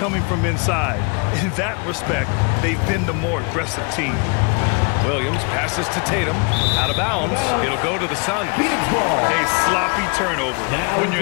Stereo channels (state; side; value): quieter; right; 33.2 dB